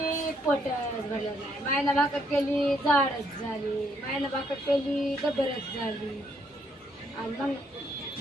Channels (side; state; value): both; normal; correlation 0.71